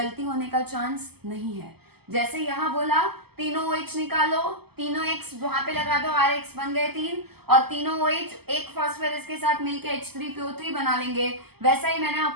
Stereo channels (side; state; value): left; late; 0.96 ms